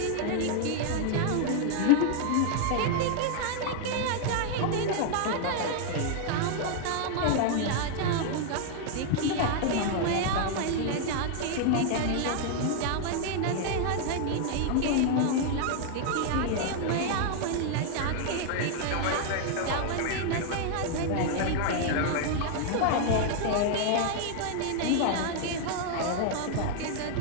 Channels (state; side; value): different; both; correlation 0.00